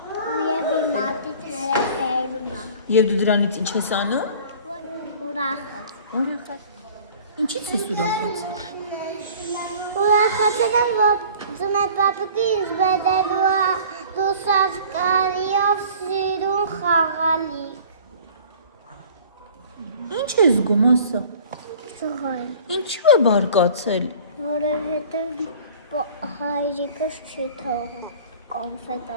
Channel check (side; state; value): both; inverted; correlation -0.46